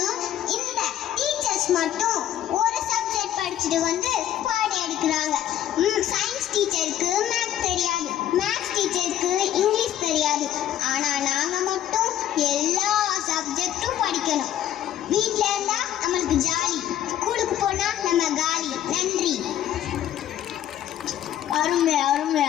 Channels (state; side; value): quieter; right; 11.4 dB